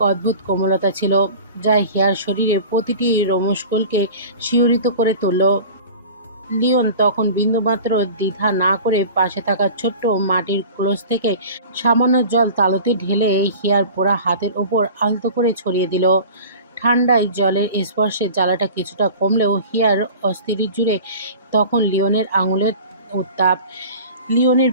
অদ্ভুত কোমলতা ছিল, যা হিয়ার শরীরে প্রতিটি রোমশকলকে শিহরিত করে তুলল। লিওন তখন বিন্দুমাত্র দ্বিধা না করে পাশে থাকা ছোট্ট মাটির ক্লোজ থেকে সামান্য জল তালুতে ঢেলে হিয়ার পোড়া হাতের ওপর আলতো করে ছড়িয়ে দিল। ঠান্ডায় জলের স্পর্শে জ্বালাটা কিছুটা কমলেও হিয়ার অস্থির জুড়ে তখন লিওনের আঙুলের উত্তাপ। লিওনের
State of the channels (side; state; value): both; inverted; correlation -0.39